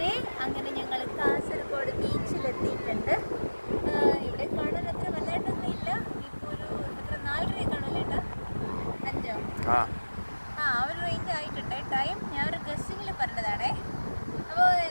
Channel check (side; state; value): both; inverted; correlation -1.00